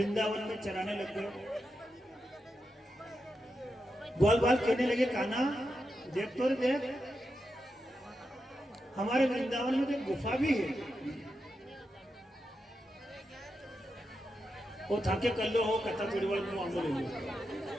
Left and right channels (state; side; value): normal; both; correlation 0.87